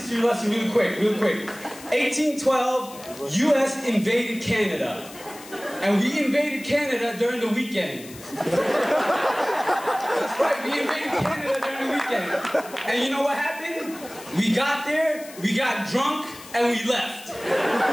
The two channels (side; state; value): left; noise; hiss, 17 dB below the sound